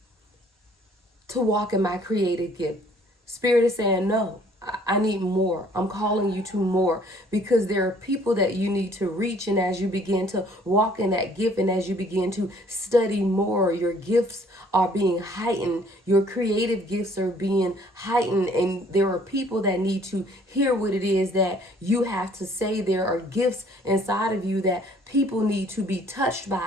to walk in my creative gift. Spirit is saying, no, I need more. I'm calling you to more, because there are people that you need to reach. And as you begin to walk in that gift, and as you begin to study more, your gifts are being heightened. Your creative gifts are being heightened. And there are people that need to hear what it is that you have to say. There are gifts inside of you that people need to be touched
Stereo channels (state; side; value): normal; both; correlation 0.59